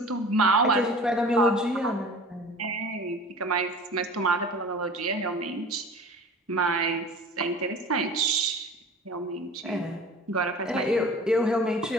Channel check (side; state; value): both; normal; correlation 0.41